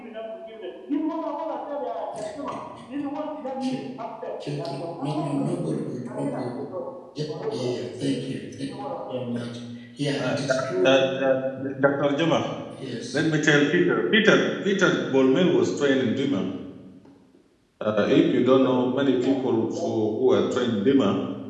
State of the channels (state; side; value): identical; both; correlation 1.00